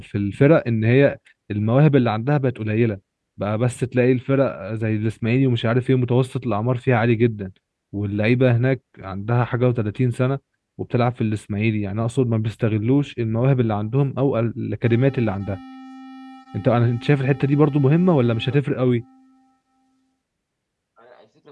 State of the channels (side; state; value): both; identical; correlation 1.00